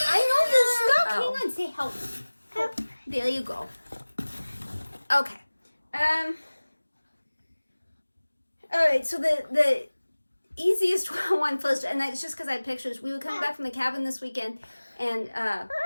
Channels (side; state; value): both; inverted; correlation -1.00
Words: know this stuff. Hang on, say help. Help. There you go. Okay. Alright, so the easiest one first, and it's just because I had pictures. We were coming back from the cabin this weekend, and